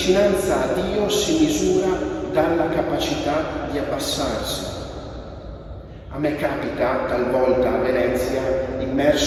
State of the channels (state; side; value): identical; both; correlation 1.00